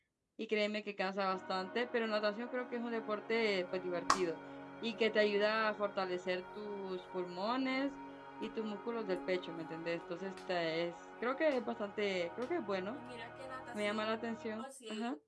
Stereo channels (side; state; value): both; identical; correlation 1.00